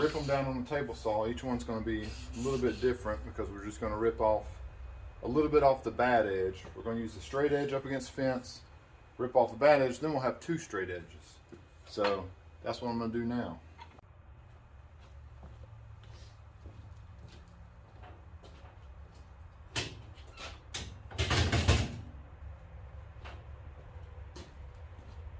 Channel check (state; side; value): identical; both; correlation 1.00